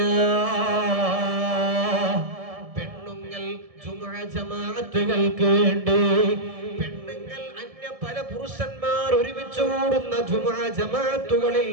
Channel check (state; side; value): late; left; 1.7 ms